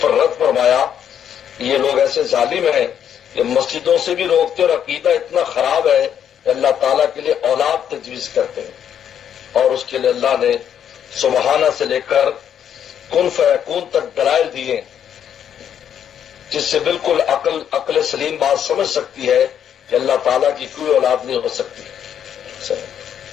پر رد فرمایا. یہ لوگ ایسے ظالم ہیں کہ مسجدوں سے بھی روکتے اور عقیدہ اتنا خراب ہے کہ اللہ تعالیٰ کے لیے اولاد تجویز کرتے ہیں. اور اس کے لیے اللہ نے سبحانہ سے لے کر کن فیکون تک دلائل دیے جس سے بالکل عقل سلیم بات سمجھ سکتی ہے کہ اللہ تعالیٰ کی کوئی اولاد نہیں ہو سکتی.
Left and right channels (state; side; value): quieter; right; 9.1 dB